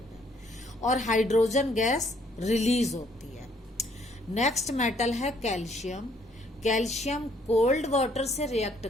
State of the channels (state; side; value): normal; both; correlation 0.65